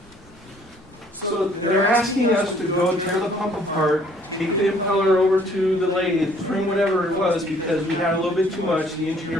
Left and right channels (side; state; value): both; normal; correlation 0.60